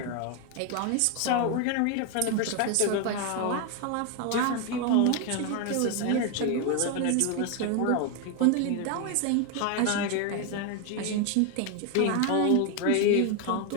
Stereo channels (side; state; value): both; different; correlation 0.01